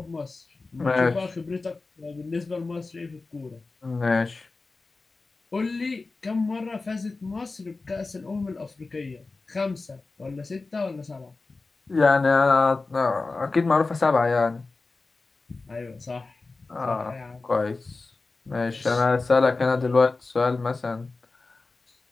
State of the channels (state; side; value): quieter; right; 3.7 dB